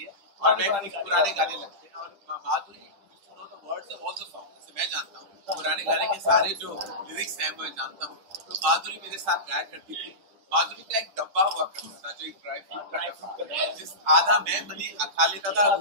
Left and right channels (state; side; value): late; left; 10 ms